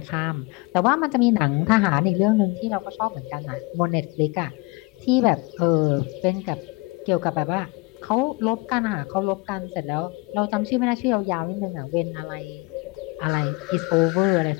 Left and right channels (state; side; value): quieter; right; 26.2 dB